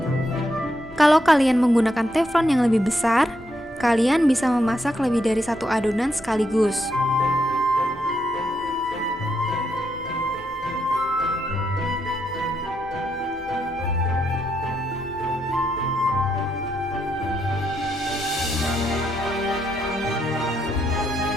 Kalau kalian menggunakan teflon yang lebih besar, kalian bisa memasak lebih dari 1 adonan sekaligus.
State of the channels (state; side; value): noise; left; hum, 24 dB below the sound